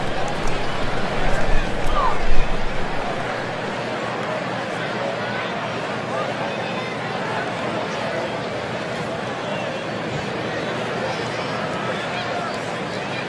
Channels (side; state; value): both; identical; correlation 1.00